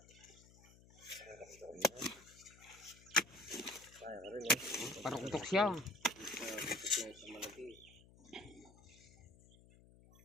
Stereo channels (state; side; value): noise; left; hum, 23 dB below the sound